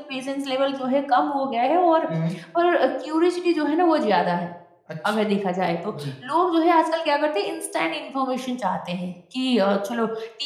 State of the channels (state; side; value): identical; both; correlation 1.00